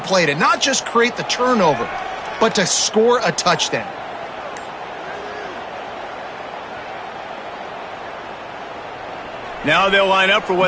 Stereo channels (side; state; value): both; identical; correlation 1.00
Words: to not just create the turnover, but to score a touchdown. Now they'll line up for